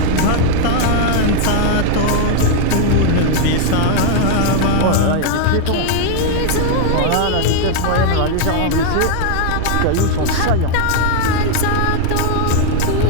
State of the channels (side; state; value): both; different; correlation 0.00